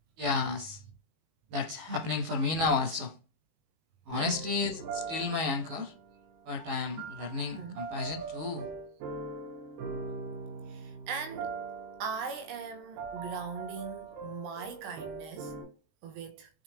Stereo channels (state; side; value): late; left; 19 ms